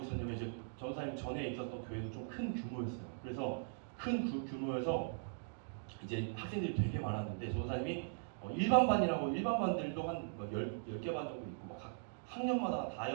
있었냐면 이제 전도사님 전에 있었던 교회도 좀 큰 규모였어요. 그래서 큰 규모여서 이제 학생들이 되게 많았는데 전도사님이 일반 반들도 한 10개 반 정도 있고 각 학년마다 다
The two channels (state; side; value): silent; left; digital silence